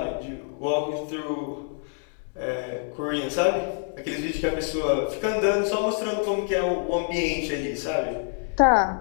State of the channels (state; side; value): silent; right; 59 dB below the other